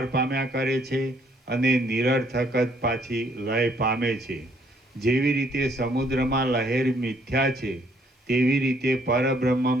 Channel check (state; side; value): normal; both; correlation 0.66